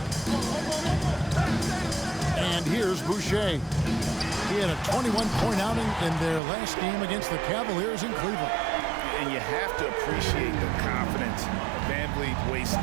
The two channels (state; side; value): drops out; left; at 6.4 s